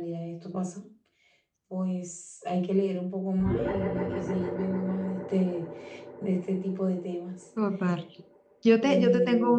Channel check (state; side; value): identical; both; correlation 1.00